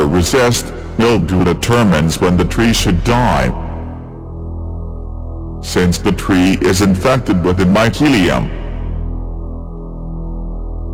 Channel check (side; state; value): both; identical; correlation 1.00